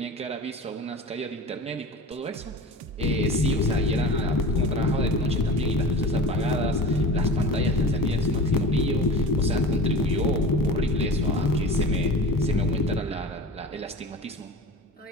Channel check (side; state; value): both; normal; correlation 0.34